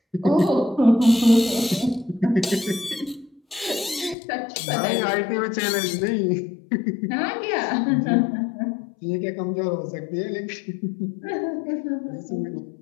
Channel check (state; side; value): drops out; right; at 4.2 s